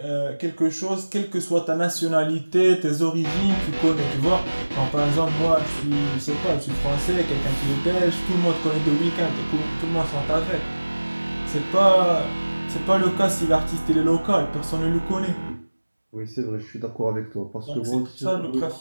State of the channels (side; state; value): both; inverted; correlation -1.00